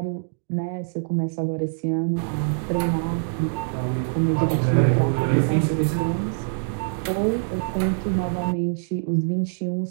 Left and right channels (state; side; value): silent; left; digital silence